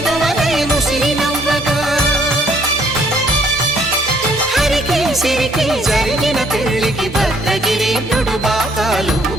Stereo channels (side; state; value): both; normal; correlation 0.65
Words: ముసిరి నవ్వగా, హరికి సిరికి జరిగిన పెళ్లికి భద్రగిరీంద్రుడు బాకాలు